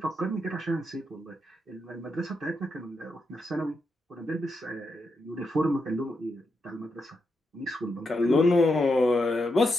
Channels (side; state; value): both; normal; correlation 0.84